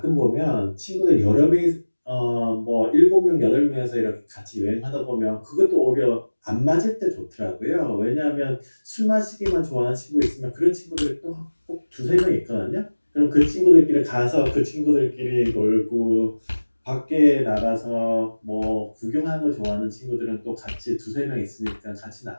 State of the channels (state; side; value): inverted; both; correlation -1.00